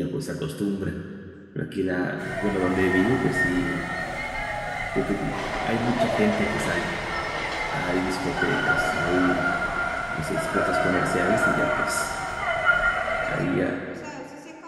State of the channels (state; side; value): identical; both; correlation 1.00